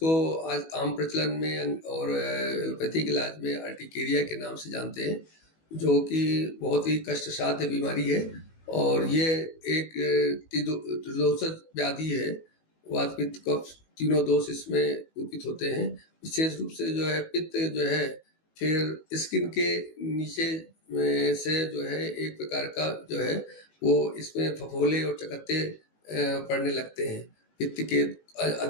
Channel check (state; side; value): late; right; 18 ms